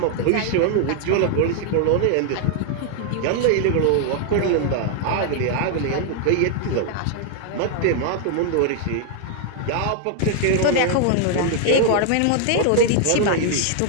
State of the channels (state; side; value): different; both; correlation 0.00